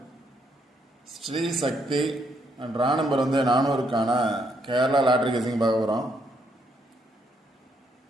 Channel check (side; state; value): both; normal; correlation 0.74